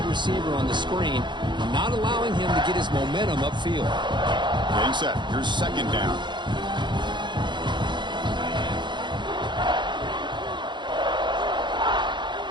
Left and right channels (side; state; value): left; late; 0.22 ms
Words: receiver on the screen, not allowing him to get his momentum upfield. Getting set. Here's 2nd down.